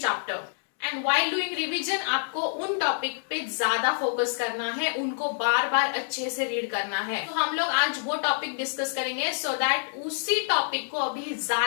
chapter. And while doing revision आपको उन टॉपिक पे ज्यादा फोकस करना है, उनको बार बार अच्छे से रीड करना है. तो हम लोग आज वो टॉपिक डिस्कस करेंगे सो दैट उसी टॉपिक को अभी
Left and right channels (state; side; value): silent; right; digital silence